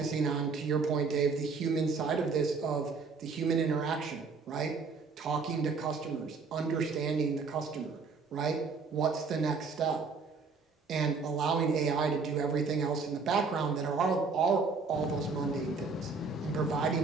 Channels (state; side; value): quieter; left; 4.6 dB